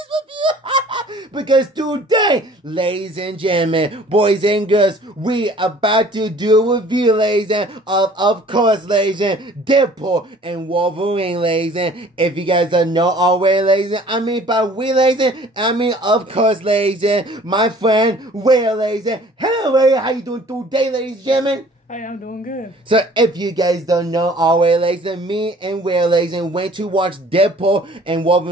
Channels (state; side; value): normal; both; correlation 0.52